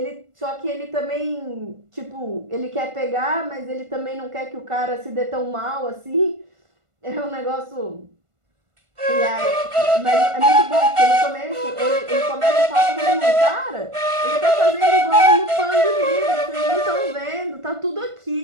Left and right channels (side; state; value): left; late; 1.5 ms